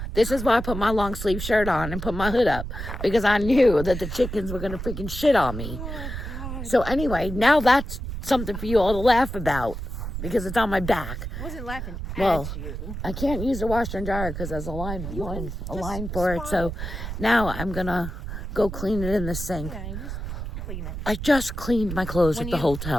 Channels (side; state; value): right; noise; rumble, 6 dB below the sound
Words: This is why I put my long sleeve shirt on and put my hood up. Because I knew that the chickens were going to freaking shit on me. So anyway, now that's something for you all to laugh about. Because it's on my back. I wasn't laughing Well, at you. I can't use the washer and dryer because there's a line for it. So now I'm going to go clean it in the sink. Yeah, you just clean it. I just cleaned my clothes at the